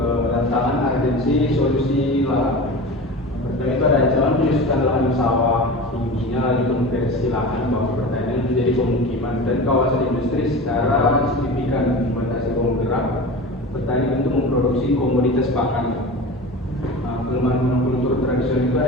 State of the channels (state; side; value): normal; both; correlation 0.32